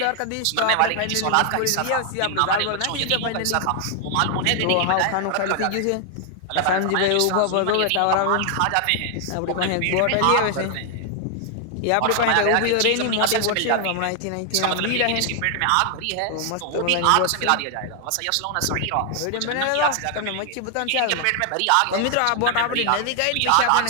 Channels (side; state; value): both; different; correlation 0.00